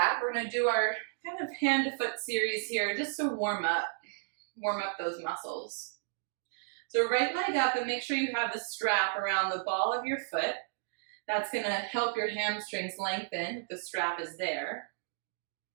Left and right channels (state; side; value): silent; left; digital silence